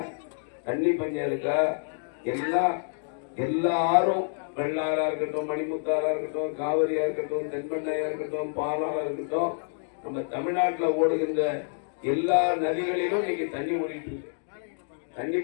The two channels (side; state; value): right; silent; digital silence